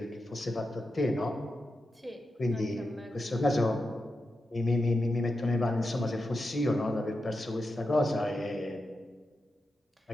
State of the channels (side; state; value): both; normal; correlation 0.89